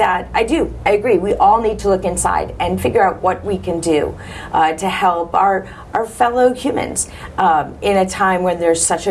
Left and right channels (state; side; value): identical; both; correlation 1.00